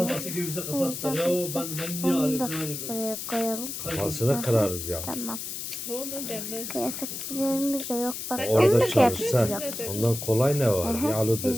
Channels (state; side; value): noise; left; hiss, 6 dB below the sound